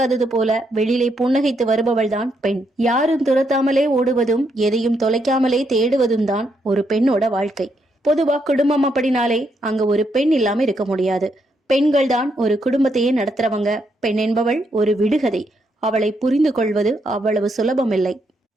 போல வெளியிலே புன்னகைத்து வருபவள்தான் பெண். யாரும் துரத்தாமலே ஓடுவதும் எதையும் தொலைக்காமலே தேடுவதும் தான் ஒரு பெண்ணோட வாழ்க்கை. பொதுவா குடும்பம் அப்படினாலே அங்க ஒரு பெண் இல்லாம இருக்க முடியாது. பெண்கள் தான் ஒரு குடும்பத்தையே நடத்துறவங்க. பெண் என்பவள் ஒரு விடுகதை. அவளை புரிந்து கொள்வது அவ்வளவு சுலபமில்லை.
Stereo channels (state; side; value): normal; both; correlation 0.77